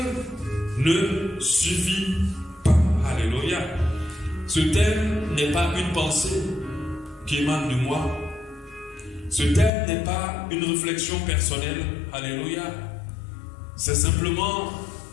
ne suffit pas. Alléluia. Ce thème n'est pas une pensée qui émane de moi. Ce thème n'est pas une réflexion personnelle. Alléluia. C'est simplement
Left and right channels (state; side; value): drops out; right; at 9.7 s